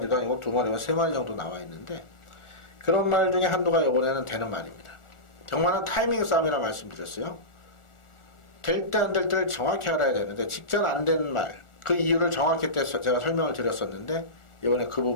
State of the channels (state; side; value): late; right; 1.4 ms